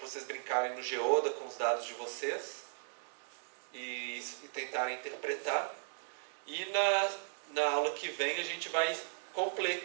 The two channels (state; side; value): silent; left; digital silence